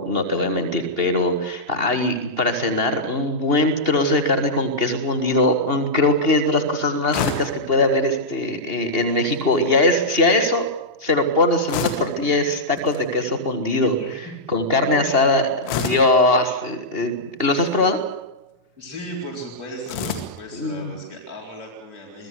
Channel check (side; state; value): left; late; 2.8 ms